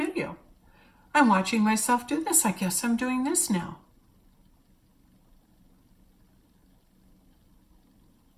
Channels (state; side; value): identical; both; correlation 1.00